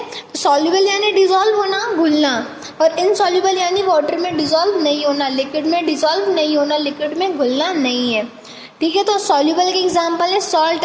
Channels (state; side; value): identical; both; correlation 1.00